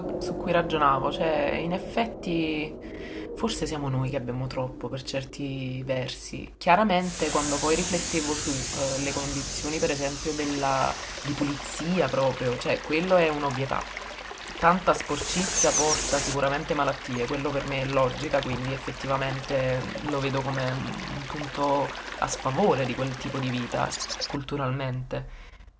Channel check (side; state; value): both; identical; correlation 1.00